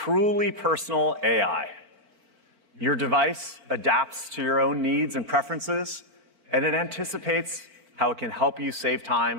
personal AI. Your device adapts to your own needs and preferences, and it anticipates how it can help you save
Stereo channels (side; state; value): left; late; 4.1 ms